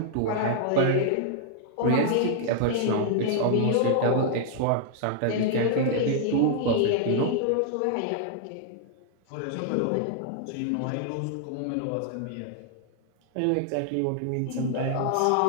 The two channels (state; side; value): different; both; correlation -0.01